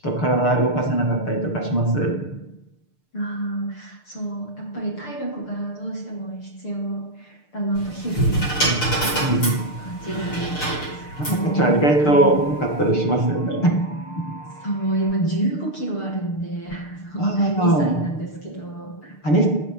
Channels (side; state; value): right; late; 6.7 ms